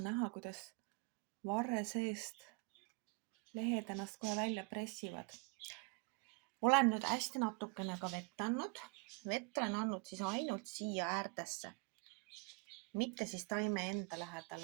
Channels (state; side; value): quieter; left; 29.4 dB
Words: näha, kuidas varre seest lehed ennast kohe välja pressivad. Olen nüüd hästi natukene ka vett andnud. Vett olen andnud siis ainult siia äärdesse, mitte siis taime enda